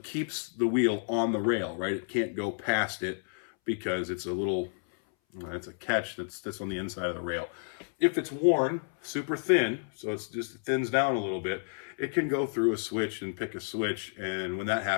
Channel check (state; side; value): silent; right; 57 dB below the other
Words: keeps the wheel on the rail, right? It can't go past it because it's a catch that's on the inside of the rail. If it's worn super thin, so it just thins down a little bit, it can go through a switch and pick a switch, and when that